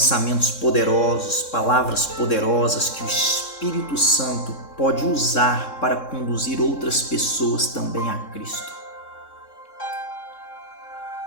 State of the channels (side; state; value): right; late; 3.6 ms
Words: poderosos, palavras poderosas que o Espírito Santo pode usar para conduzir outras pessoas também a Cristo.